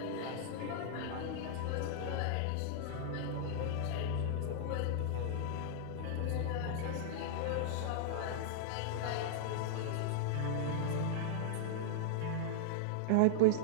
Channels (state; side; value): different; both; correlation -0.01